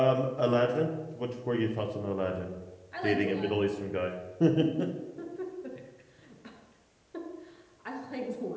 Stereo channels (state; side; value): identical; both; correlation 1.00